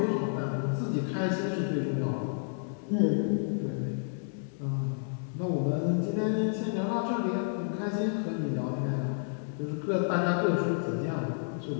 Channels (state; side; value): silent; right; digital silence